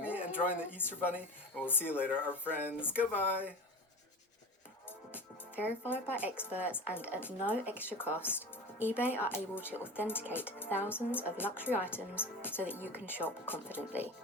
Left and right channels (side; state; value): both; normal; correlation 0.30